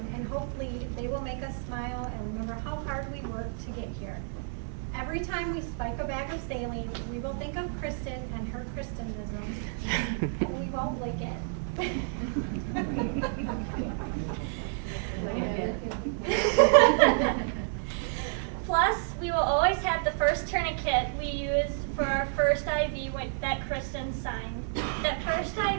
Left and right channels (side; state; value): left; silent; 58 dB below the other